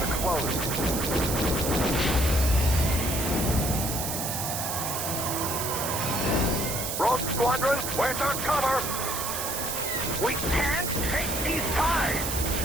closed. Rogue Squadron, where's our cover? We can't take these ties!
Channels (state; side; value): noise; right; hiss, 3 dB below the sound